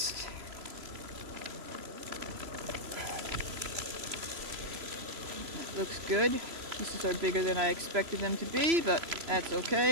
That looks good. Pieces are bigger than I expected them to be, but that's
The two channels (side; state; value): left; late; 3.0 ms